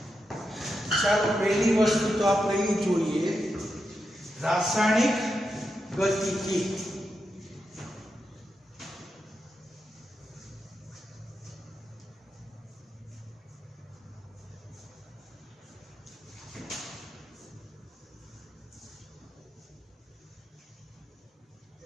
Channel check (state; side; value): normal; both; correlation 0.86